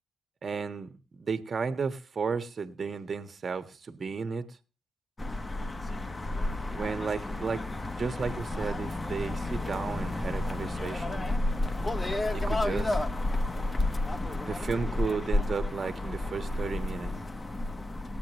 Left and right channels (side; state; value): both; normal; correlation 0.88